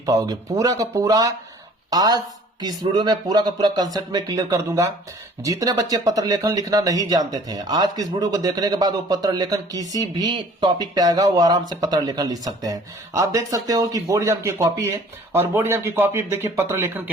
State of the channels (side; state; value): both; normal; correlation 0.52